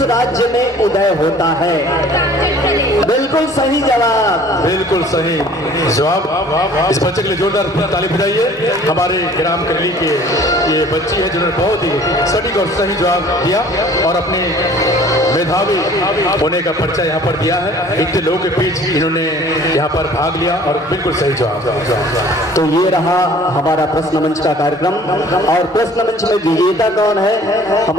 राज्य में उदय होता है? बिल्कुल सही जवाब। बिल्कुल सही जवाब। इस बच्चे के लिए जोरदार ताली बजाइए। हमारे ग्राम करली के ये बच्ची है जिन्होंने बहुत ही सटीक और सही जवाब दिया और अपने मेधावी होने का परिचय यहाँ पर दिया है। इतने लोगों के बीच इन्होंने यहाँ पर भाग लिया और बिल्कुल सही जवाब। तो ये रहा हमारा प्रश्न मंच का कार्यक्रम और प्रश्न मंच में विजेता कौन है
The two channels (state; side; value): normal; both; correlation 0.51